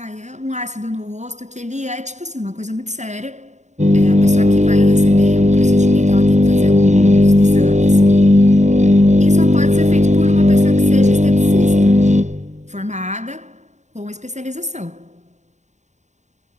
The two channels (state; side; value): late; left; 0.34 ms